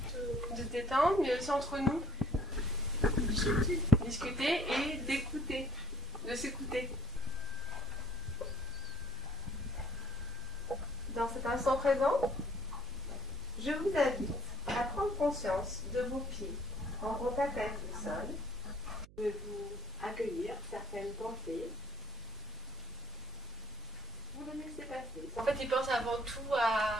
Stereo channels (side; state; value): right; noise; hum, 22 dB below the sound